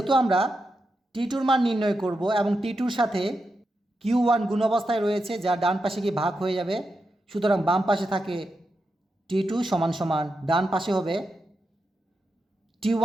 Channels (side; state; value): both; normal; correlation 0.87